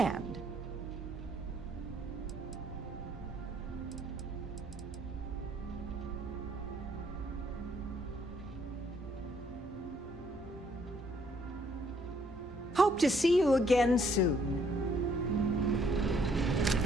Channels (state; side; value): normal; both; correlation 0.66